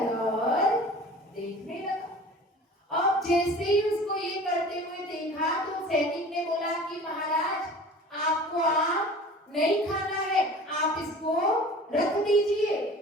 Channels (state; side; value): normal; both; correlation 0.42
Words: और देखने लगा। अब जैसे ही उसको ये करते हुए देखा तो सैनिक ने बोला कि महाराज आपको आम नहीं खाना है, आप इसको रख दीजिए,